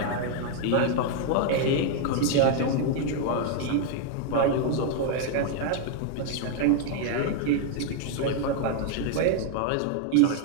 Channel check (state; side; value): different; both; correlation 0.00